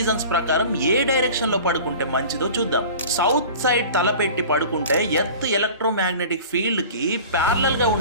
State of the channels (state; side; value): inverted; both; correlation -0.40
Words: ప్రకారం ఏ డైరెక్షన్ లో పడుకుంటే మంచిదో చూద్దాం. సౌత్ సైడ్ తలపెట్టి పడుకుంటే ఎర్త్ ఎలక్ట్రోమాగ్నెటిక్ ఫీల్డ్ కి ప్యారలల్ గా